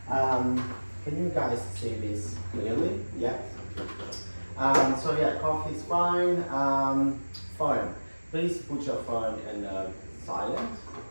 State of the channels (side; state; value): both; inverted; correlation -1.00